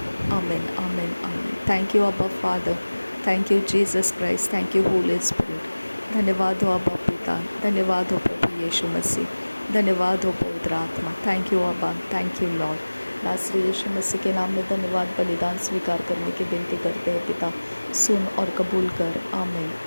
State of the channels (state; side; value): inverted; both; correlation -1.00